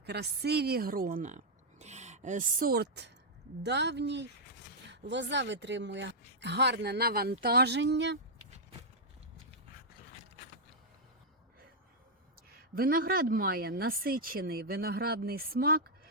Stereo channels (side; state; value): both; normal; correlation -0.06